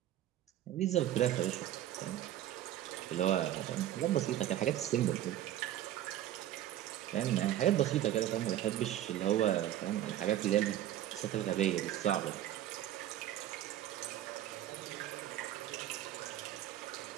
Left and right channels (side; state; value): left; quieter; 12.6 dB